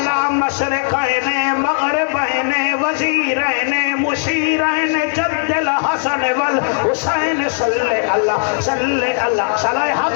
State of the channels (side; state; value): right; silent; digital silence